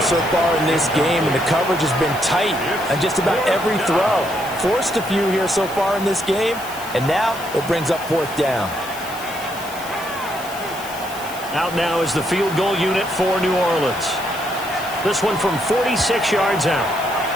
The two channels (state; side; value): noise; left; hiss, 15 dB below the sound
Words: far in this game, and the coverage has been tight on just about every throw. Forced a few here so far in this game, and now it brings up 4th down. Out now is the field goal unit for New Orleans. This one from 46 yards out.